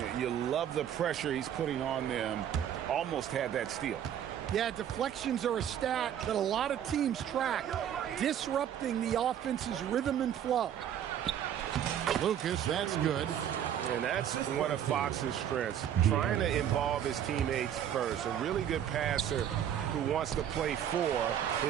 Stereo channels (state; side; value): quieter; left; 9.9 dB